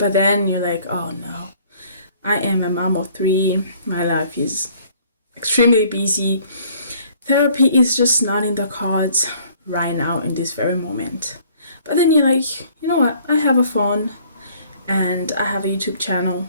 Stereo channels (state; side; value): inverted; both; correlation -0.58